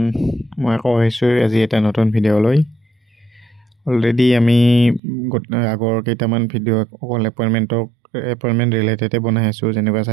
মই আকৌ আহিছোঁ আজি এটা নতুন ভিডিঅ'লৈ। অলৰেডি আমি আগৰ কেইটামান ভিডিঅ' অকল এপইণ্টমেণ্ট ৰিলেটেডে বনাই আছোঁ, যেনেকুৱা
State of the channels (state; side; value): drops out; left; at 5.0 s